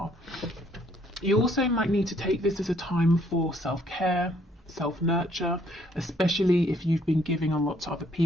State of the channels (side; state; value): both; normal; correlation 0.66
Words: You also might need to take this as a time for self-care, self-nurture, especially if you've been giving a lot to other